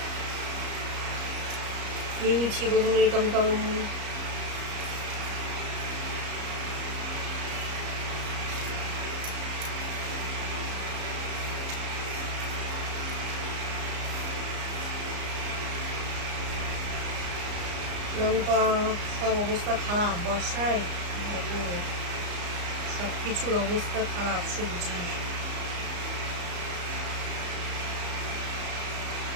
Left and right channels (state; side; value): late; left; 34 ms